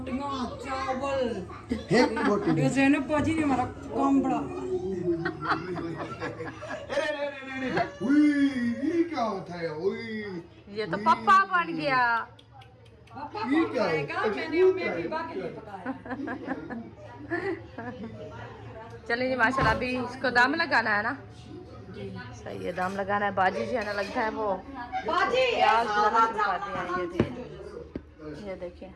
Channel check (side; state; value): both; identical; correlation 1.00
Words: चावल एक बोटी ये ज़ैनब बाजी ने हमारा काम बड़ा उई ये क्या होता है उई ये तो पप्पा बन गया। पापा ये को क्या है? खाएगा मैंने उम्मीद बीबा के लिए पकाया चलिए जी माशाल्लाह अभी इसको दाम लगाना है ना। सही है दाम लगाना है। बाजी जी है ना लगता है वो बाजी प्याज लगा दिया ये देखिए ये देखिए